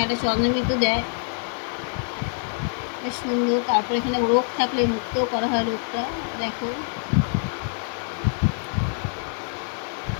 একটা চন্দ্রবিন্দু দেয়, বেশ সুন্দর। তারপর এখানে রোগ থাকলে মুক্ত করা হয় রোগটা, দেখো।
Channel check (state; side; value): silent; right; 62 dB below the other